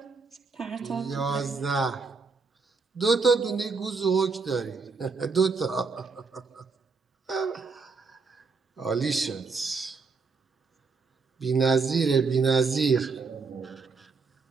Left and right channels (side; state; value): left; quieter; 4.6 dB